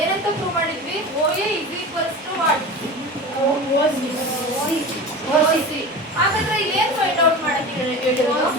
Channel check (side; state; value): both; normal; correlation 0.31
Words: ಏನಂತ ಪ್ರೂವ್ ಮಾಡಿದ್ವಿ? O A is equals to what? OC. ಹಾಗಾದ್ರೆ ಇಲ್ಲಿ ಏನ್ ಫೈಂಡ್ ಔಟ್ ಮಾಡಕ್ಕೆ ಹೇಳಿರೋದು?